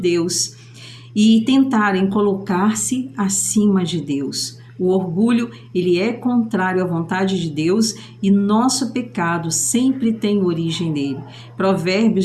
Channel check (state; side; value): identical; both; correlation 1.00